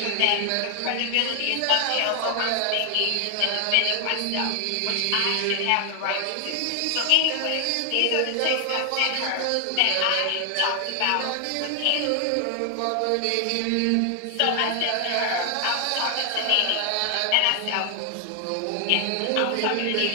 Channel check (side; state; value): both; different; correlation 0.00